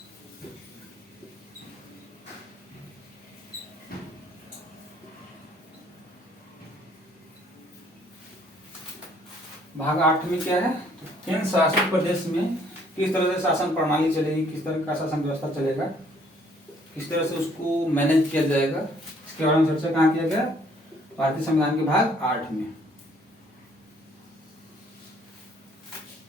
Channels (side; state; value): both; normal; correlation 0.63